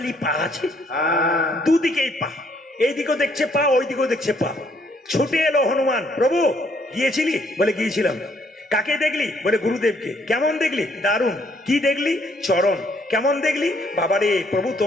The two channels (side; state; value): both; normal; correlation 0.68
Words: পা আছে, দুদিকেই পা, এইদিকেও দেখছে পা, ওই দিকেও দেখছে পা। ছুটে এলো হনুমান, প্রভু গিয়েছিলি? বলে গিয়েছিলাম। কাকে দেখলি? বলে গুরুদেবকে। কেমন দেখলি? দারুণ। কি দেখলি? চরণ। কেমন দেখলি? বাবারে প্রভু,